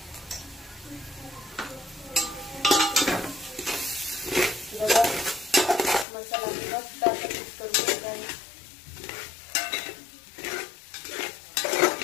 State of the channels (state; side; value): drops out; right; at 6.1 s